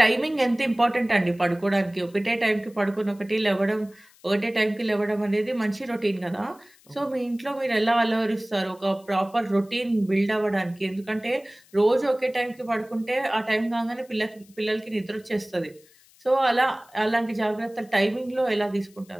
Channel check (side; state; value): left; noise; hiss, 28 dB below the sound